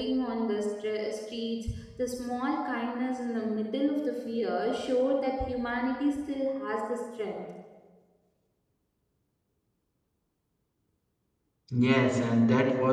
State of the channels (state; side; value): identical; both; correlation 1.00